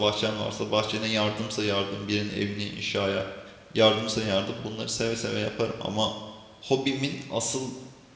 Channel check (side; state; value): both; identical; correlation 1.00